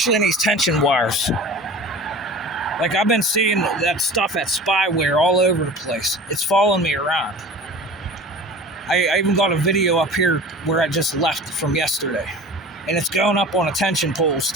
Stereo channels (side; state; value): both; normal; correlation 0.39